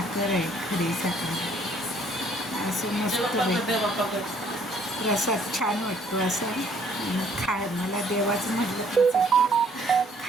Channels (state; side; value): normal; both; correlation 0.62